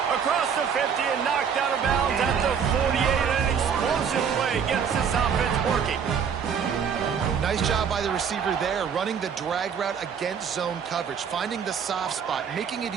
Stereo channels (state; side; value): quieter; left; 7.1 dB